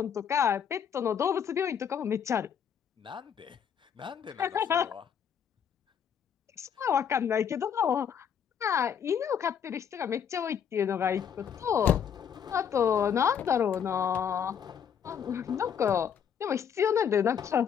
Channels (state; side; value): quieter; right; 8.0 dB